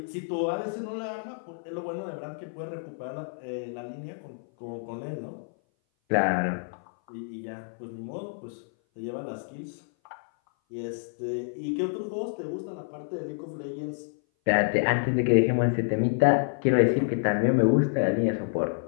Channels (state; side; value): silent; right; 57 dB below the other